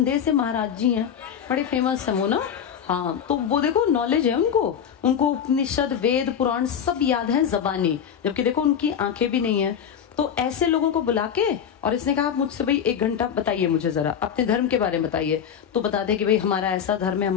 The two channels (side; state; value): right; quieter; 8.2 dB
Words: से महाराज जी हैं, बड़े फेमस है वो ना, हाँ, तो वो देखो नॉलेज है उनको उपनिषद वेद पुराण सब याद है जबानी, जबकि देखो उनकी आंखें भी नहीं है। तो ऐसे लोगों को बुला के, और इसने कहा आप मुझसे भाई 1 घंटा बताइए, मुझे जरा अपने धर्म के बारे में बताइए। तो बता दे कि भाई हमारा ऐसा धर्म है,